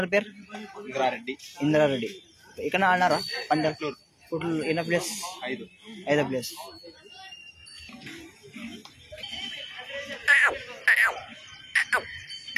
పేరు ఇంద్రారెడ్డి. ఇక్కడ ఆడినారా పందెం? ఎన్న ప్లేస్? 5వ ప్లేస్.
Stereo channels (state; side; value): identical; both; correlation 1.00